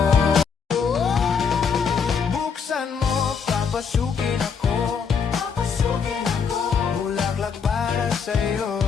Buksan mo, papasukin ako. Bulaklak para sa'yo.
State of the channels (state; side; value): quieter; right; 6.2 dB